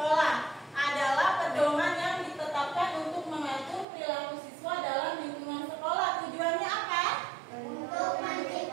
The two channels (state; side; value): drops out; left; at 3.9 s